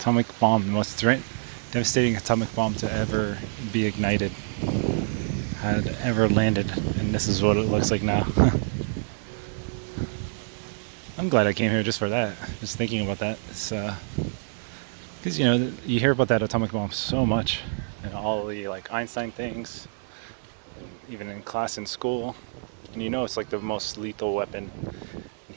most devastating atomic bomb to ever be ignited, had ever landed, and this is what it looks like now. I'm glad I came here just for that. Just thinking about that. It's because you hear about that atomic bomb so much, and all the like Einstein things, even in class in school, and it's like the most lethal weapon in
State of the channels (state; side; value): silent; left; digital silence